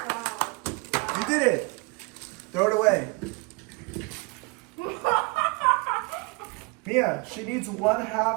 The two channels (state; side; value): quieter; left; 28.1 dB